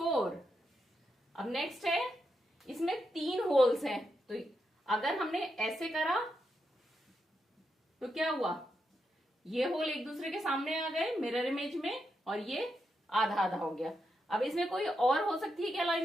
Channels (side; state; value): both; normal; correlation 0.84